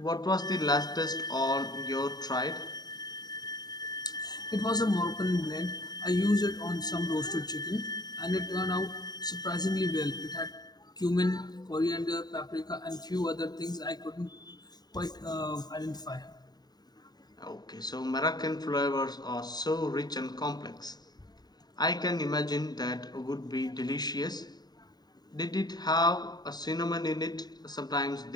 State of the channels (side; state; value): right; late; 0.20 ms